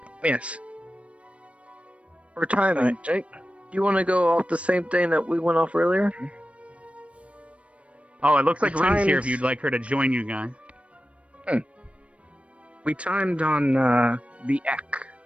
Yes. for timing. Alright, Jake. You want to go off the same thing that we went off earlier? Oh, it looks like The Ren's here if times- you'd like her to join you guys. We timed on the Ek.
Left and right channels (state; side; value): late; left; 0.062 ms